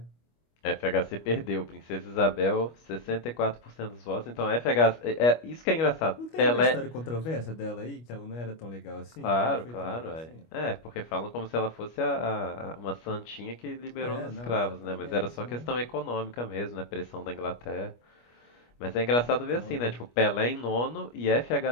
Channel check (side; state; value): right; late; 25 ms